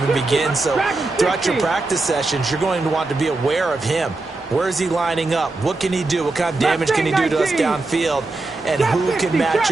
begins. So throughout your practice sessions, you're going to want to be aware of him. Where is he lining up? What can he do? What kind of damage can he do to us downfield? And who can match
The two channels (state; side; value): quieter; left; 3.3 dB